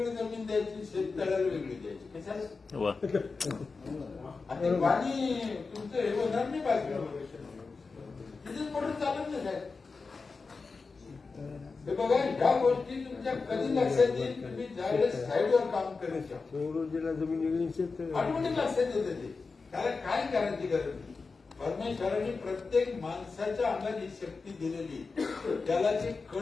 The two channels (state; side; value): quieter; right; 4.4 dB